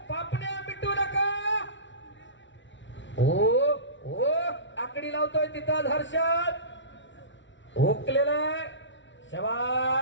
पापण्या मिटू नका. ओ आकडी लावतोय तिथं हर्षद, हुकलेला आहे.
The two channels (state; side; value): late; right; 0.54 ms